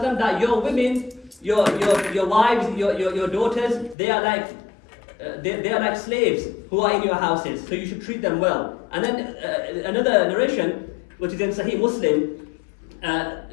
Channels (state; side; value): drops out; right; at 4.0 s